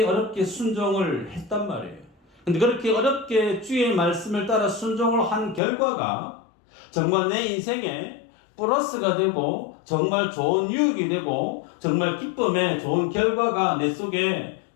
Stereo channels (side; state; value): right; drops out; at 5.6 s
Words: 순종을 했단 말이에요. 근데 그렇게 어렵게 주의 말씀을 따라 순종을 한 결과가 정말 내 인생에 플러스가 되고 정말 좋은 유익이 되고 정말 기쁨의 좋은 결과가 내 속에